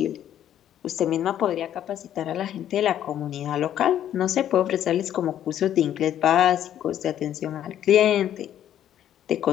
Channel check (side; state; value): right; quieter; 10.9 dB